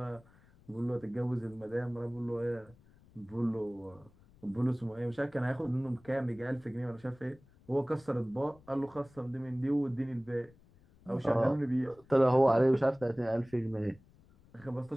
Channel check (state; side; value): noise; left; rumble, 27 dB below the sound